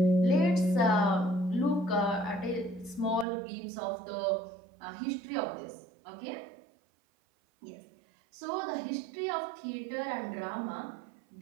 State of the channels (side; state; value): left; drops out; at 3.2 s